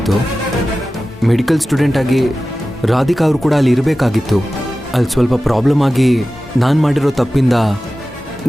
ಮೆಡಿಕಲ್ ಸ್ಟೂಡೆಂಟ್ ಆಗಿ ರಾಧಿಕಾ ಅವರು ಕೂಡ ಅಲ್ಲಿ ಇರಬೇಕಾಗಿತ್ತು. ಅಲ್ಲಿ ಸ್ವಲ್ಪ ಪ್ರಾಬ್ಲಮ್ ಆಗಿ ನಾನು ಮಾಡಿರೋ ತಪ್ಪಿಂದ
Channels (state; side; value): normal; both; correlation 0.95